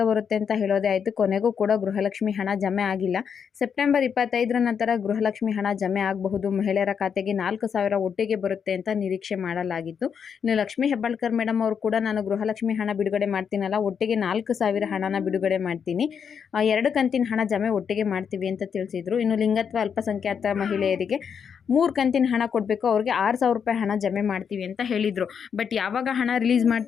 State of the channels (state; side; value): quieter; right; 7.1 dB